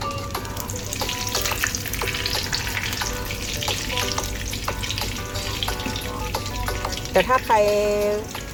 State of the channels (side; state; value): both; identical; correlation 1.00